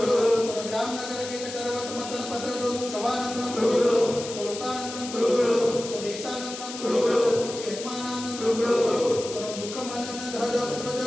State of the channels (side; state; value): left; noise; hiss, 10 dB below the sound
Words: स्वग्राम नगर के करवत मतन पत्र दोमुख शवानंदनम कुरु स्वलोकानंदनम कुरु स्वदेशानंदनम कुरु यजमानानंदनम कुरु स्वमुखमनन धद पुत्र